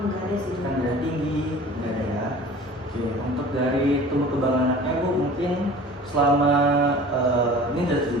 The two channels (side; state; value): both; normal; correlation 0.42